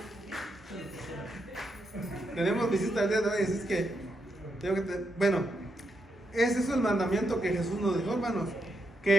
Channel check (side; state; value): both; normal; correlation 0.81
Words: Tenemos visita el día de hoy, así es que bueno, ese es el mandamiento que Jesús nos dijo, hermanos,